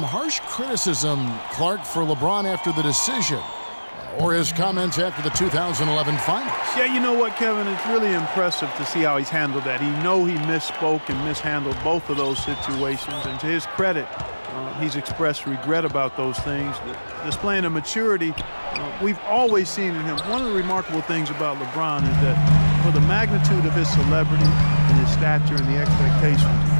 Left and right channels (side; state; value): both; inverted; correlation -1.00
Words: harsh criticism, Clark, for LeBron after the decision, or his comments after the 2011 finals. Yeah, you know what, Kevin? It's really impressive to see how he's handled that. He misspoke and mishandled both of those situations. And to his credit, he's expressed regret about those things, displaying a maturity we've always seen in him. One of the remarkable things about LeBron is that for the magnitude of his celebrity and his stature and the expectations,